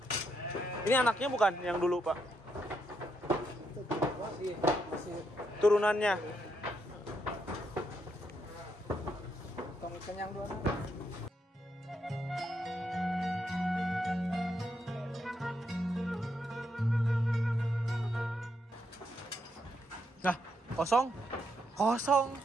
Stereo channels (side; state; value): both; normal; correlation 0.79